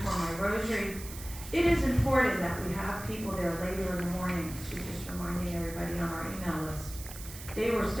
for my rosary. It is important that we have people there later in the morning. She's just reminding everybody on our email list. They were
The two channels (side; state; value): right; noise; hiss, 13 dB below the sound